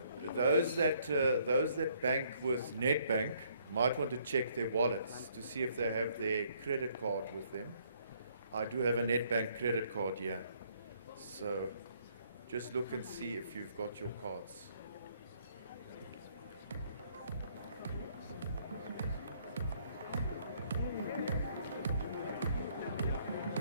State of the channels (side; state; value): both; inverted; correlation -0.66